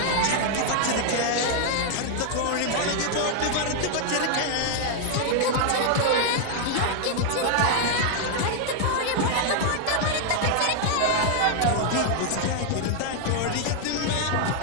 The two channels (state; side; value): different; both; correlation 0.00